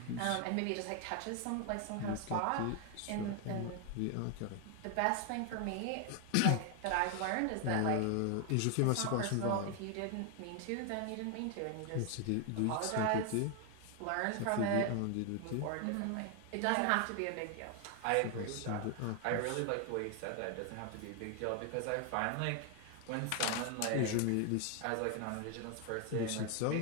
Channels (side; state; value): both; different; correlation 0.01